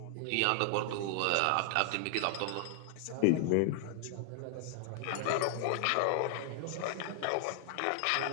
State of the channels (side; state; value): both; different; correlation 0.00